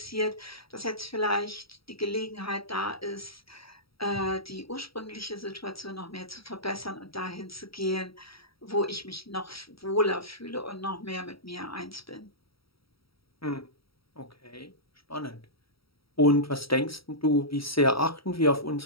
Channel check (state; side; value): late; right; 0.75 ms